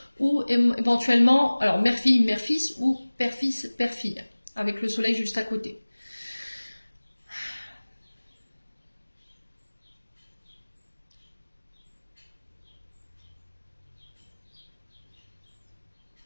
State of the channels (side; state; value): both; inverted; correlation -1.00